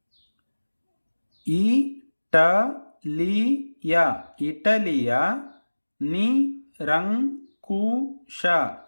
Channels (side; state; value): both; inverted; correlation -1.00